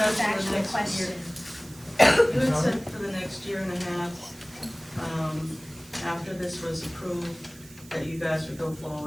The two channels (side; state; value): right; noise; hiss, 21 dB below the sound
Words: the for the actual next question. You had said for the next year and a half, after this was approved, that you guys would go